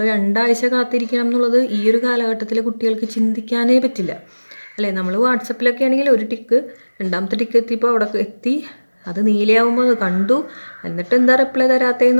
2 ആഴ്ച കാത്തിരിക്കണം എന്നുള്ളത് ഈ ഒരു കാലഘട്ടത്തിലെ കുട്ടികൾക്ക് ചിന്തിക്കാനേ പറ്റില്ല അല്ലേ. നമ്മൾ വാട്സപ്പിലൊക്കെ ആണെങ്കിൽ ഒരു ടിക്ക്, 2ാമത്തെ ടിക്ക് എത്തിയപ്പോൾ അവിടെ എത്തി, അത് നീലയാവുമ്പോൾ അത് കണ്ടു, എന്നിട്ട് എന്താ റിപ്ലൈ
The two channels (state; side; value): inverted; both; correlation -1.00